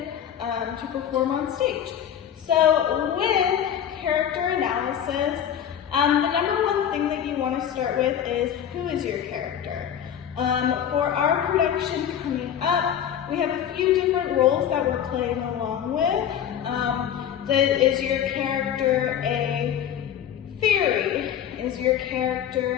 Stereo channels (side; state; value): right; quieter; 9.5 dB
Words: to perform on stage. So with character analysis, the number one thing that you want to start with is, who is your character? For our production coming up, we have a few different roles that we're playing along with. Is your character a fairy? Is your